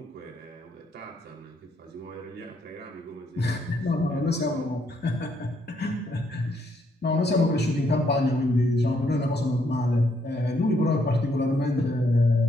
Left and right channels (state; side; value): normal; both; correlation 0.73